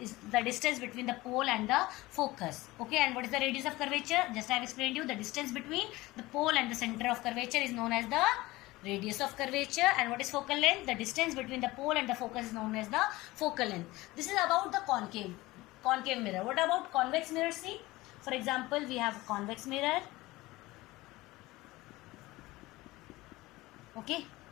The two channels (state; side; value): quieter; right; 19.6 dB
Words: the distance between the pole and the focus. Okay, and what is the radius of curvature? Just I have explained you, the distance between the pole and the center of curvature is known as the radius of curvature. And what is focal length? The distance between the pole and the focus is known as the focal length. This is about the concave mirror. What about convex mirror? See, for example, we have convex mirror. Okay,